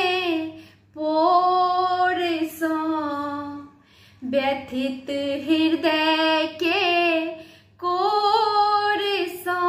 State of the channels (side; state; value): both; identical; correlation 1.00